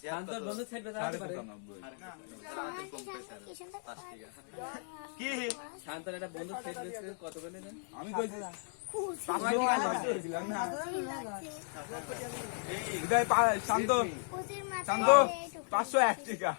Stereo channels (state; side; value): silent; right; digital silence